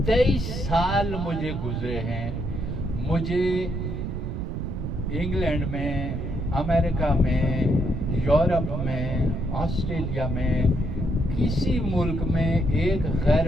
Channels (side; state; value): right; noise; rumble, 4 dB below the sound